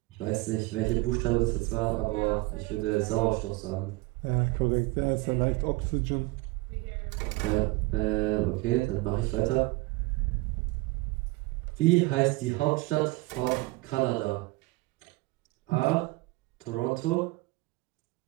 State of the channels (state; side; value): quieter; left; 22.4 dB